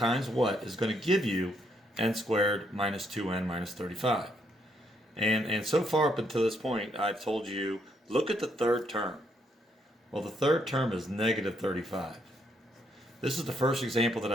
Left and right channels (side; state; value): both; normal; correlation 0.74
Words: what is going to give you n squared minus 2n minus 35. And so far up until this point, I've told you, look at the third term. Well, the third term is negative 35. This is the first example that